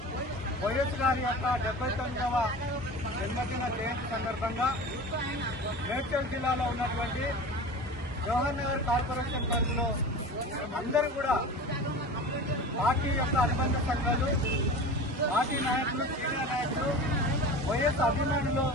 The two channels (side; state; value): both; normal; correlation 0.34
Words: వైఎస్ గారి యొక్క 79వ జన్మదిన జయంతి సందర్భంగా మేడ్చల్ జిల్లాలో ఉన్నటువంటి జవహర్ నగర్ కార్పొరేషన్ పరిధిలో అందరూ కూడా పార్టీ యొక్క అనుబంధ సంఘాలు, పార్టీ నాయకులు, సీనియర్ నాయకులు, వైఎస్ అభిమానులు,